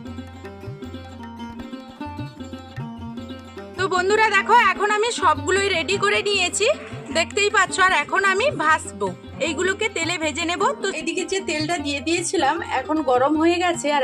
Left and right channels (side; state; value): both; identical; correlation 1.00